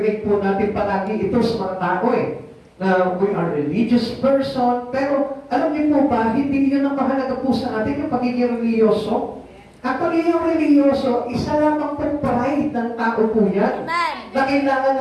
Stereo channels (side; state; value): both; identical; correlation 1.00